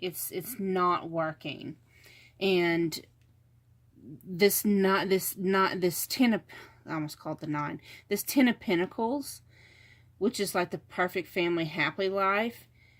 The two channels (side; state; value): both; identical; correlation 1.00